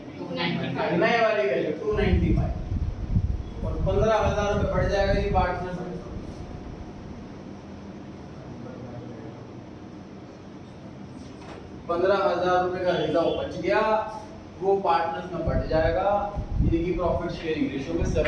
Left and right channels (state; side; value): identical; both; correlation 1.00